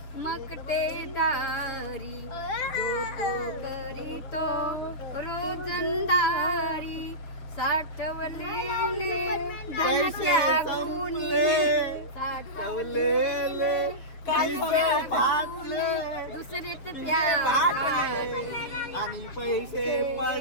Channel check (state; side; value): late; right; 6.7 ms